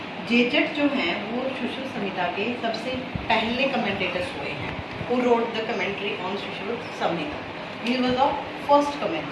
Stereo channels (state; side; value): identical; both; correlation 1.00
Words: जेजट जो हैं वो सुश्रुत संहिता के सबसे पहले commentators हुए हैं who wrote the commentary on Shushruta Samhita. He was the first